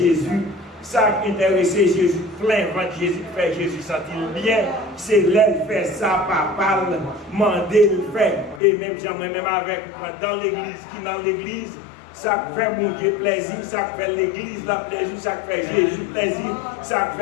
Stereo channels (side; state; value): right; drops out; at 8.6 s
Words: Ça qui intéressait Jésus, plein ventre Jésus, fait Jésus sentir bien. C'est l'aile fait ça, papa, mandé le fait. Et même j'aimerais même avec, dans l'église, qui dans l'église, ça fait mon Dieu plaisir, ça fait l'église la plaisir, ça fait Jésus plaisir, ça